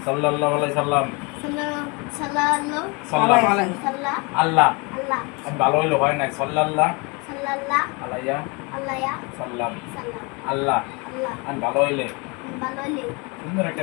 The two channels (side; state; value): right; quieter; 29.6 dB